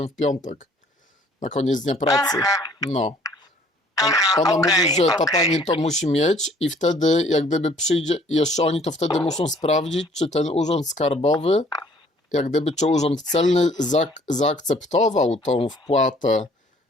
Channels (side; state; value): both; normal; correlation 0.58